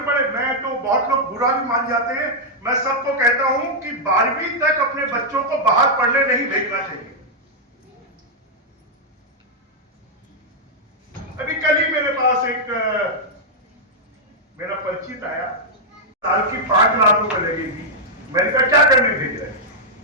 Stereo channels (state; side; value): normal; both; correlation -0.05